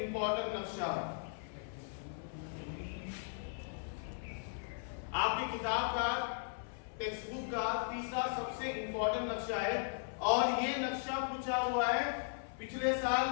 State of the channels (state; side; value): silent; right; 53 dB below the other